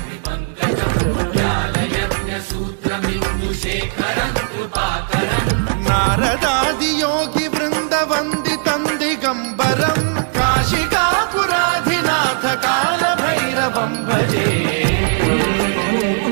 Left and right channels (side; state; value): left; silent; digital silence